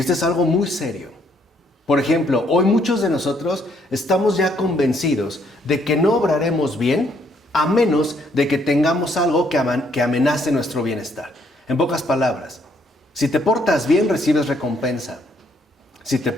es algo muy serio. Por ejemplo, hoy muchos de nosotros estamos ya convencidos de que no obraremos bien a menos de que tengamos algo que amenace nuestro bienestar. En pocas palabras, si te portas bien, recibes recompensa. Si te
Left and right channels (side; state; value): both; normal; correlation 0.69